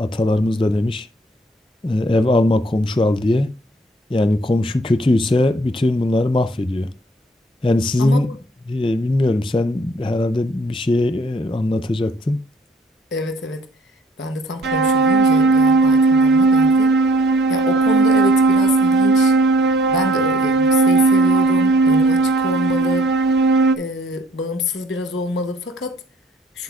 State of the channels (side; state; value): both; normal; correlation 0.58